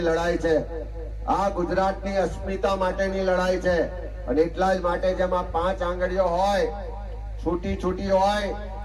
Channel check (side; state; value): both; identical; correlation 1.00